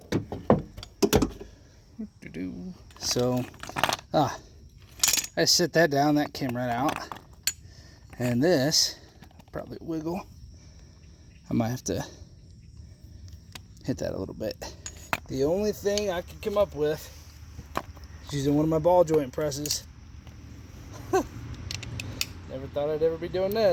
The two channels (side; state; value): both; identical; correlation 1.00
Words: So, I set that down, that came right out. And this, probably wiggle. I might have to hit that a little bit. The only thing I could come up with is using one of my ball joint presses. Never thought I'd ever be doing